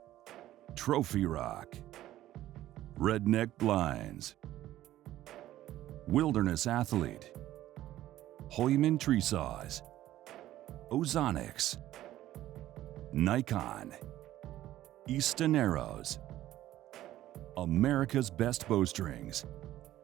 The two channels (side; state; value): left; quieter; 14.0 dB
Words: Trophy Rock, Redneck Blinds, Wilderness Athlete, Hoyman Tree Saws, Ozonics, Nikon, Easton Arrows, America's Best Bowstrings,